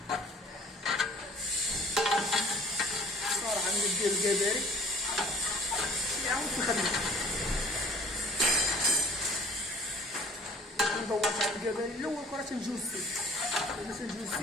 ندير الكباري يعاود في الخدمة ندور على الكباري الأول كرة تنجوزتي إلا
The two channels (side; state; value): both; normal; correlation 0.51